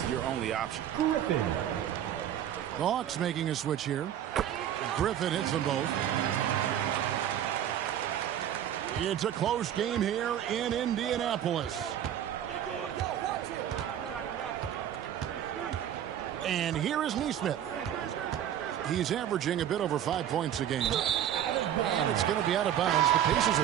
your only option. The Hawks making a switch here. Griffin hits them both. It's a close game here in Indianapolis. And here is Nesmith. He's averaging a bit over 5 points a game. And it's going to be out of bounds. The Pacers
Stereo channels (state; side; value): quieter; left; 10.5 dB